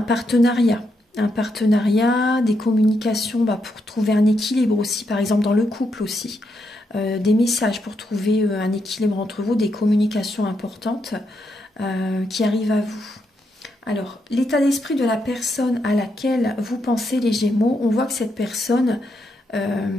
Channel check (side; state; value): both; normal; correlation 0.81